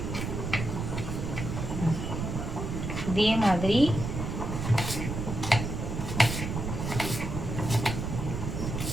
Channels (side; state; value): right; noise; rumble, 4 dB below the sound